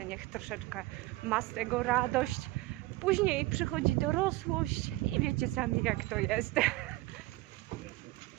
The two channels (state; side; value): quieter; left; 19.5 dB